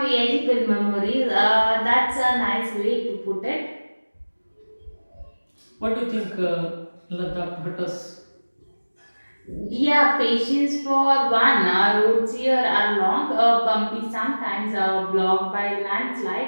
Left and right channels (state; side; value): inverted; both; correlation -1.00